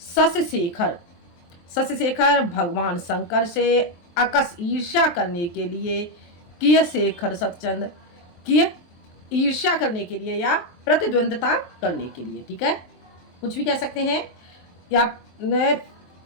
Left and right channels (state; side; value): late; right; 23 ms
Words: शेखर, शश शेखर भगवान शंकर से अकस ईर्ष्या करने के लिए, किय शेखर सतचंद, किय ईर्ष्या करने के लिए या प्रतिद्वंदता करने के लिए। ठीक है, कुछ भी कह सकते हैं, या